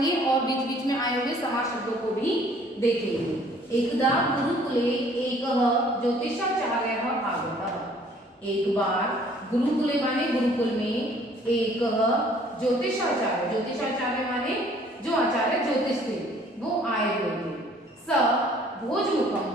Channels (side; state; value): both; normal; correlation 0.57